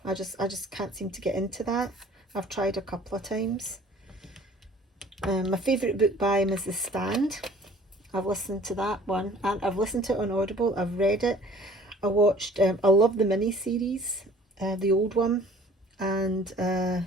I just can't seem to get into that. I've tried a couple of times. My favourite book by him is The Stand. I've listened to that one, and I've listened to it on Audible. I've read it. I watched, I love the mini-series, the old one, and in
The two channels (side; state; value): both; normal; correlation 0.51